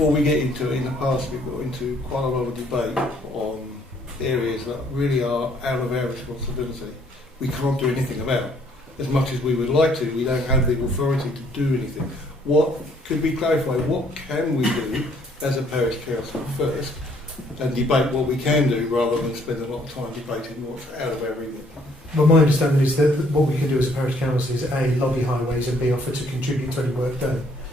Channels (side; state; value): both; normal; correlation 0.64